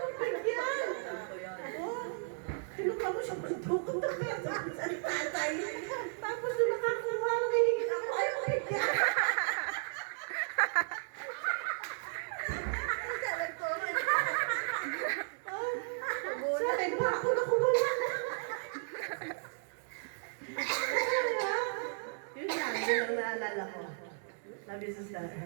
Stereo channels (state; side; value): silent; left; digital silence